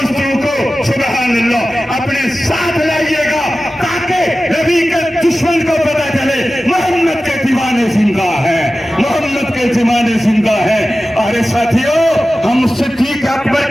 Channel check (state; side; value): normal; both; correlation 0.95